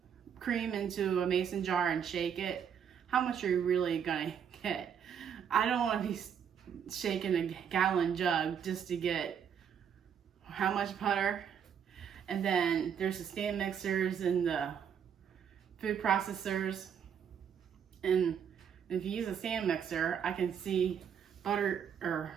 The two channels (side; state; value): left; quieter; 8.0 dB